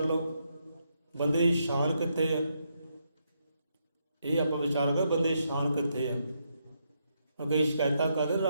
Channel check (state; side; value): inverted; both; correlation -0.79